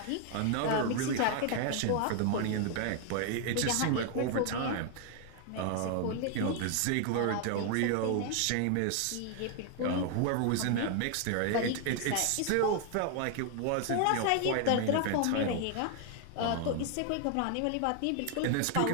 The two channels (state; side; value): different; both; correlation 0.00